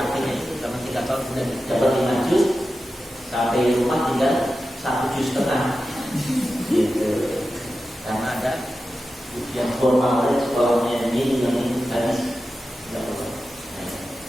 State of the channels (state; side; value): normal; both; correlation 0.92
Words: itu karena 3 tahun sudah dapat 5 juz. Sampai rumah tinggal 1,5 juz gitu. Karena ada ujian formal dari sekolahnya ini yang habis tidak perlu.